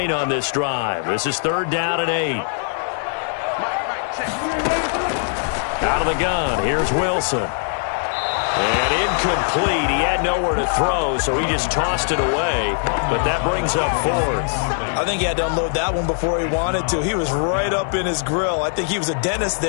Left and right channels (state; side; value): silent; right; digital silence